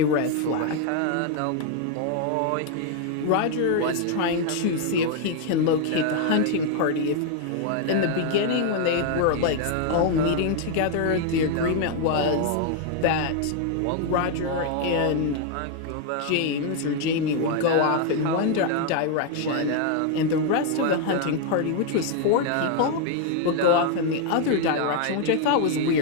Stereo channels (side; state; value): both; different; correlation 0.00